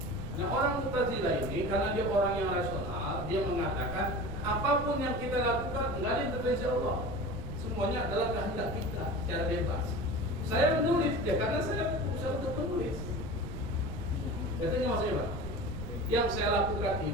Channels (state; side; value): noise; right; rumble, 8 dB below the sound